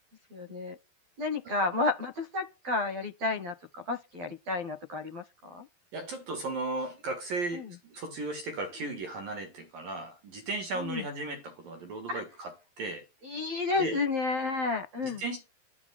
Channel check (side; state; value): left; late; 11 ms